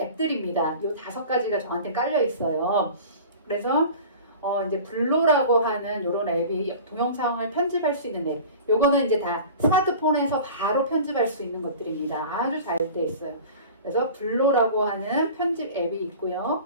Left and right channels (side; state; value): both; inverted; correlation -0.39